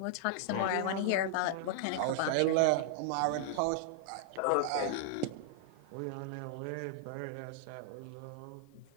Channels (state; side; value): different; both; correlation -0.01